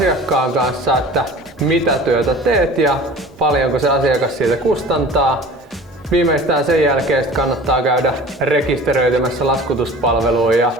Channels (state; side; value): normal; both; correlation 0.42